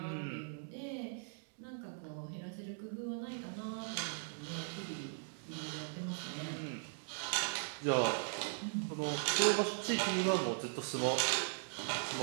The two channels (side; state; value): left; silent; digital silence